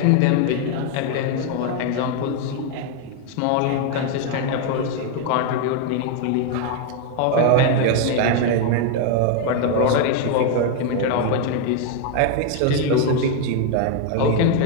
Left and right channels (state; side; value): different; both; correlation 0.01